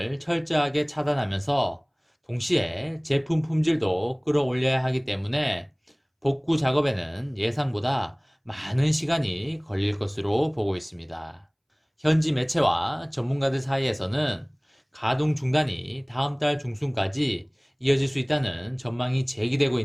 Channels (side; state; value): both; identical; correlation 1.00